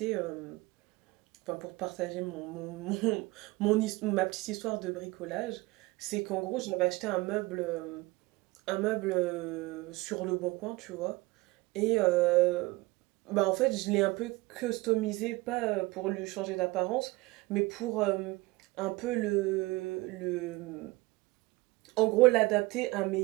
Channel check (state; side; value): quieter; left; 21.9 dB